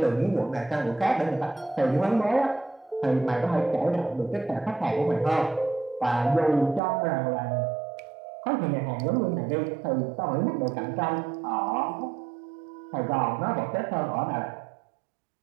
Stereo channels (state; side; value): drops out; left; at 6.8 s